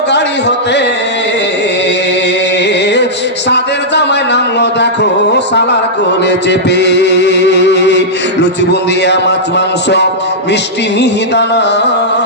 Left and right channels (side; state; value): both; normal; correlation -0.11